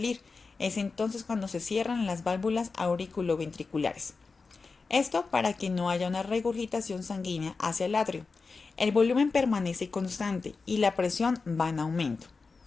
Es entonces cuando se cierran las válvulas auriculoventriculares. Esto para que no haya una regurgitación sanguínea hacia el atrio. El volumen permanece constante y la presión va en aumento.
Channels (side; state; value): right; quieter; 4.4 dB